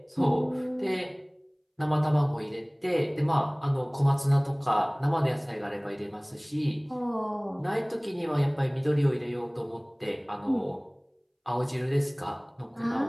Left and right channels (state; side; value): identical; both; correlation 1.00